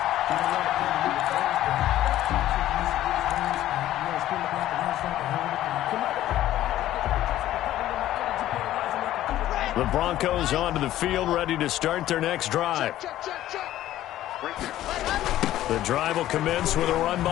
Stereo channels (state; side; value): quieter; right; 13.6 dB